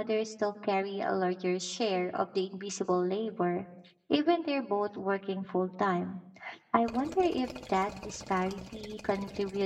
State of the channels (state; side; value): identical; both; correlation 1.00